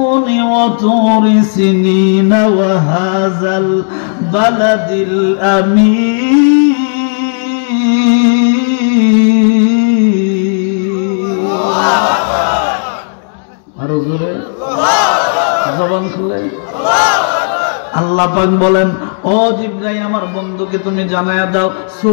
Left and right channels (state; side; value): silent; right; digital silence